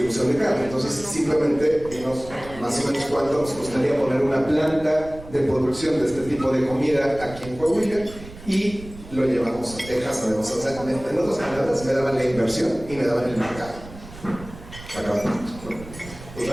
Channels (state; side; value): noise; right; rumble, 16 dB below the sound